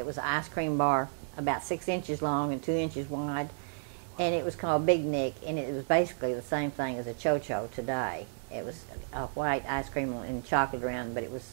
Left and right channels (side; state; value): left; silent; digital silence